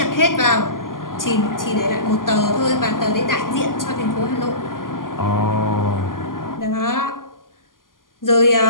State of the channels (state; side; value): late; right; 0.91 ms